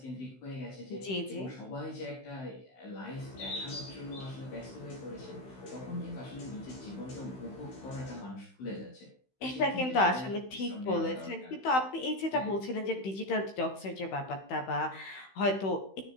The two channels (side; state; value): right; late; 15 ms